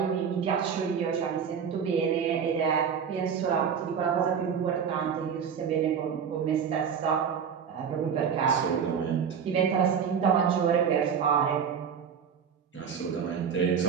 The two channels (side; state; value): left; quieter; 7.2 dB